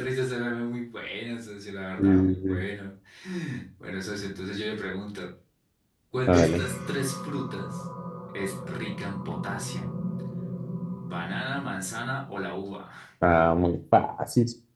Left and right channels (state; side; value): identical; both; correlation 1.00